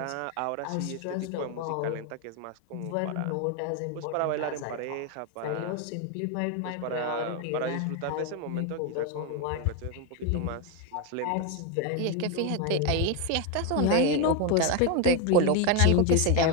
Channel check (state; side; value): different; both; correlation 0.02